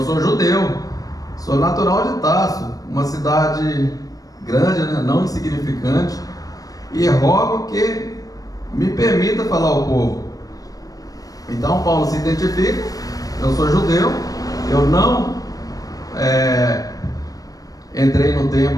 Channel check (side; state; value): right; late; 0.18 ms